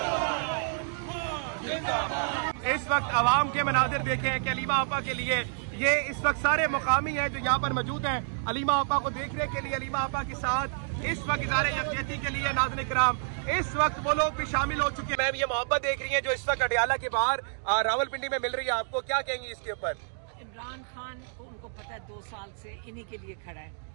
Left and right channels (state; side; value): silent; left; digital silence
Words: इस वक्त अवाम के मनाजिर देखे हैं कि अलीमा आपा के लिए ये इस वक्त सारे मुकामी हैं जो यहाँ पर मौजूद हैं अलीमा आपा को देखने के लिए, अलीमा आपा के साथ इस वक्त इज़हार यकजहती के लिए नाज़रीन किराम इस वक्त वो लोग भी शामिल हो चुके हैं। मैम ये मोहब्बत देख रही हैं जो इस वक्त अडियाला के बाहर रावलपिंडी में मिल रही है, आपको क्या कहेंगी इसके ऊपर? इमरान खान को उनको पता है 2 साल से इन्हीं के लिए खड़ा है